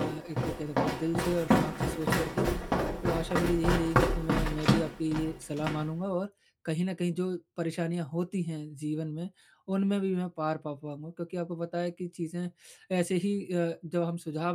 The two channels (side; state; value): both; identical; correlation 1.00